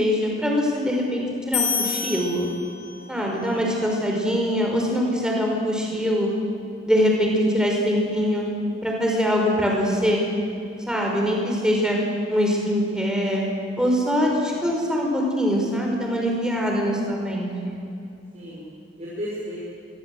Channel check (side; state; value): both; normal; correlation 0.58